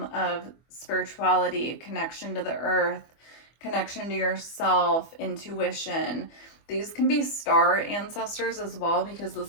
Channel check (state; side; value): late; right; 24 ms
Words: of spirituality, connection to the earth, connection to yourself, intuition. These can be star ancestors as well, because